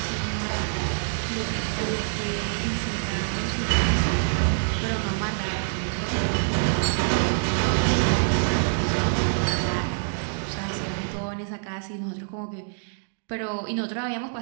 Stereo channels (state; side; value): silent; left; digital silence